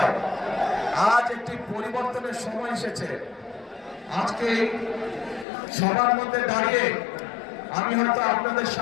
আজ একটি পরিবর্তনের সময় এসেছে। আজকে সবার মধ্যে দাঁড়িয়ে আমি হয়তো আপনাদের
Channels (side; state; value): right; drops out; at 5.5 s